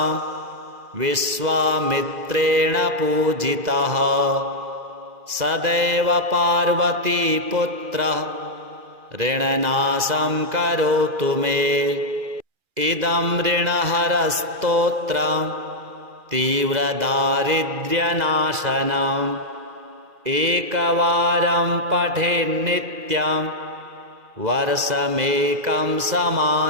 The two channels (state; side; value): late; left; 2.0 ms